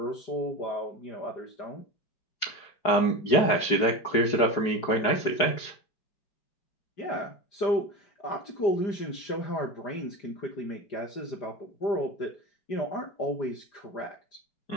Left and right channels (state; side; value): late; right; 4.8 ms